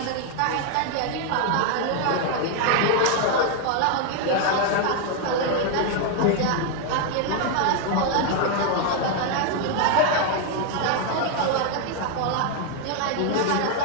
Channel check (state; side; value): different; both; correlation 0.01